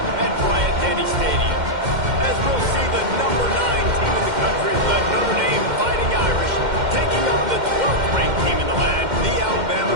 at Bryant-Denny Stadium. As we'll see the number 9 team in the country, the Notre Dame Fighting Irish, taking on the 12th ranked team in the land, the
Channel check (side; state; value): left; late; 2.1 ms